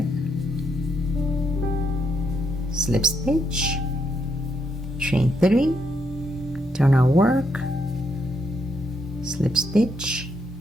Slip stitch, chain 3, turn our work, slip stitch,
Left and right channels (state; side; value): normal; both; correlation 0.77